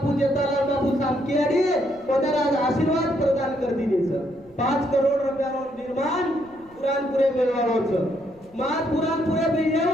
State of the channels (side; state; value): left; noise; rumble, 28 dB below the sound